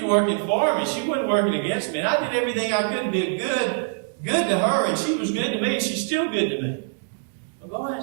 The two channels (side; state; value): left; silent; digital silence